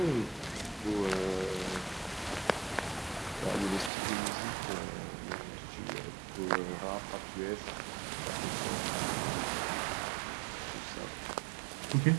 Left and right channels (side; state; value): left; drops out; at 3.9 s